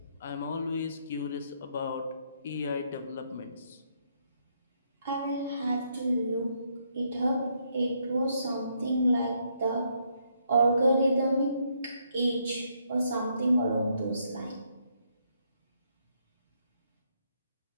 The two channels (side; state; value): both; inverted; correlation -0.74